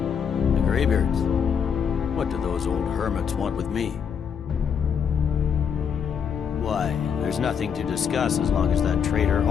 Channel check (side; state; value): right; quieter; 7.2 dB